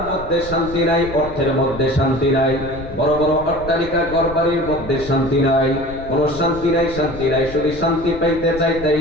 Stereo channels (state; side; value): noise; left; rumble, 14 dB below the sound